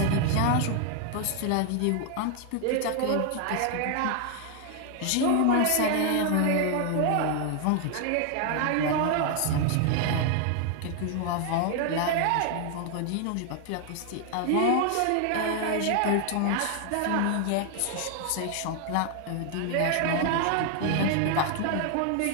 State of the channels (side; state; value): both; different; correlation 0.00